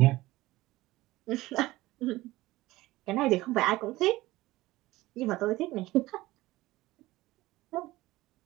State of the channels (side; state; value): left; quieter; 18.3 dB